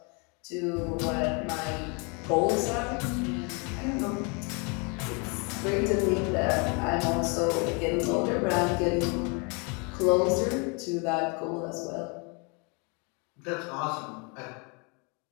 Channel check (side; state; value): right; quieter; 33.0 dB